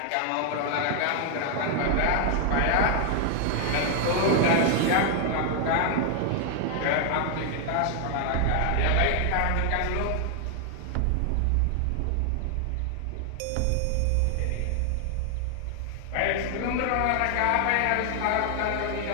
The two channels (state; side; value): different; both; correlation 0.00